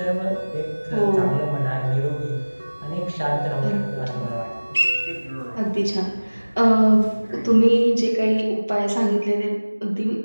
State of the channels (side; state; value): both; inverted; correlation -1.00